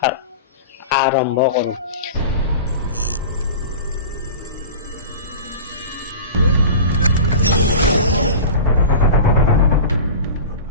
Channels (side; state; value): both; inverted; correlation -0.33